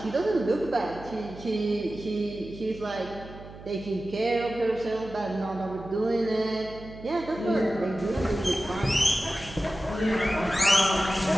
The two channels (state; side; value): noise; right; hum, 16 dB below the sound